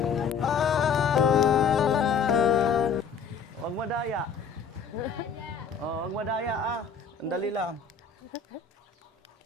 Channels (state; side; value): quieter; right; 5.8 dB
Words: Huwag madaya. Oh, huwag madaya ah. Sandali lang.